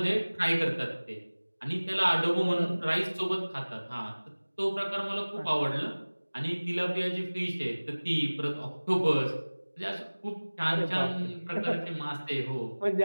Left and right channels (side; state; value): both; inverted; correlation -1.00